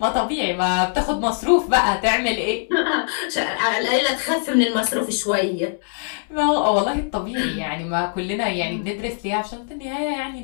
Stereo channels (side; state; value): right; silent; 64 dB below the other